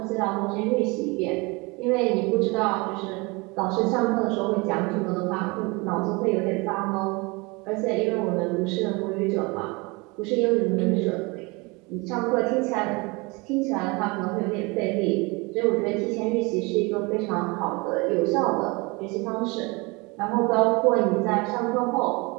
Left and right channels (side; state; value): left; quieter; 26.6 dB